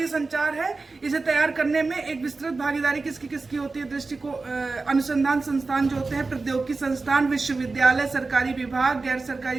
संचार है इसे तैयार करने में एक विस्तृत भागीदारी किसकी होती है? दृष्टिकोण अनुसंधान संस्थान जो होते हैं, प्रौद्योगिकी संस्थान, विश्वविद्यालय, सरकारी विभाग, गैर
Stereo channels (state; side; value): quieter; left; 3.8 dB